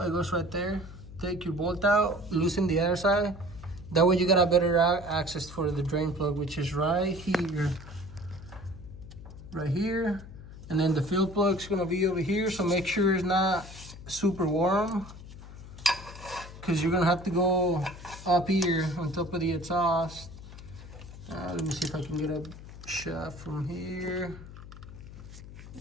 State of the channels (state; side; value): noise; left; hum, 15 dB below the sound